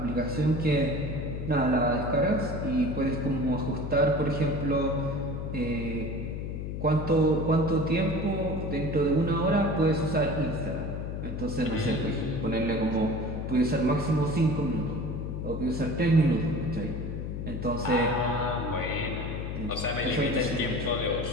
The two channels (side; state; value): left; noise; hum, 5 dB below the sound